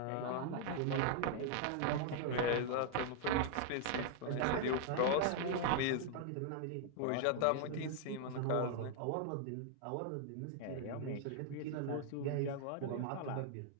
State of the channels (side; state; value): both; different; correlation 0.00